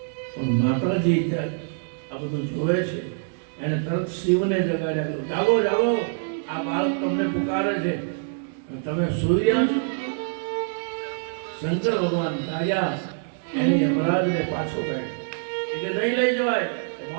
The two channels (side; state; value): left; silent; digital silence